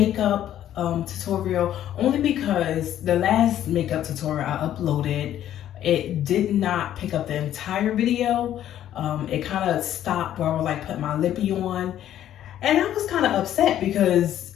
tutorial, only because the last makeup tutorial I uploaded, it did not pick up the entire video. It kind of stopped where I was like putting my lippy on, and I was kind of upset because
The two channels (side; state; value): right; quieter; 11.5 dB